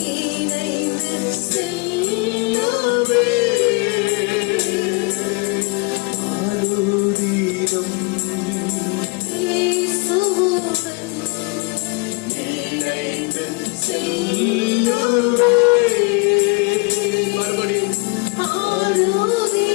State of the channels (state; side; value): quieter; right; 28.7 dB